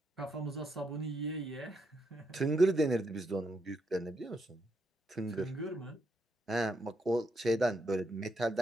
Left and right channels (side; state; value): both; normal; correlation 0.79